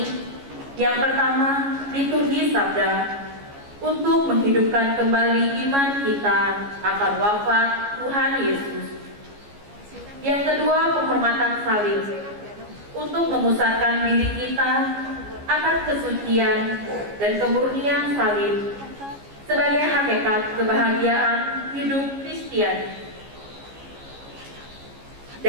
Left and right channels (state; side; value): late; left; 14 ms